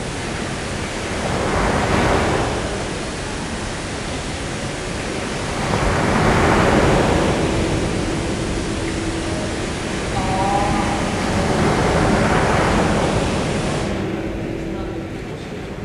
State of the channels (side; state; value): both; identical; correlation 1.00